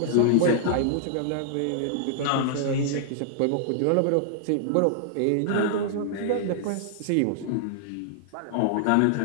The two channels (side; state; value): both; different; correlation -0.01